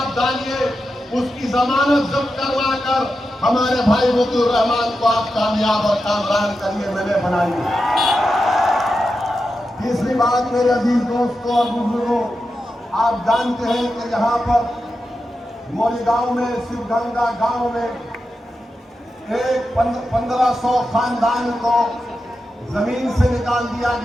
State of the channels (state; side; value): normal; both; correlation 0.89